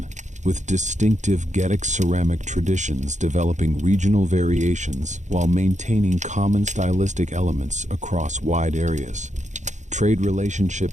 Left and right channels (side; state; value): left; late; 0.35 ms